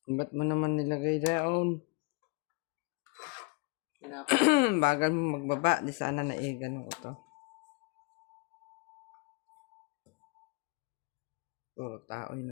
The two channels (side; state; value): right; quieter; 28.7 dB